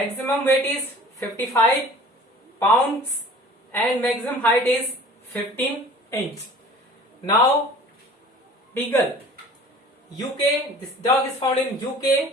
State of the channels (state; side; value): normal; both; correlation 0.46